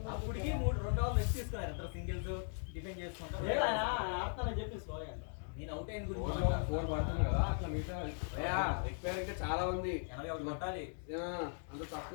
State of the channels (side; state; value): right; silent; 52 dB below the other